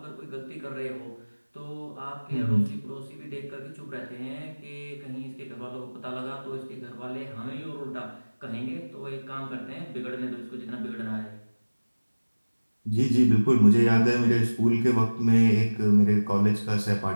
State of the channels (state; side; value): inverted; both; correlation -1.00